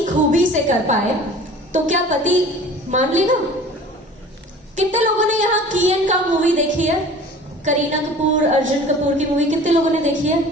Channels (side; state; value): both; normal; correlation 0.44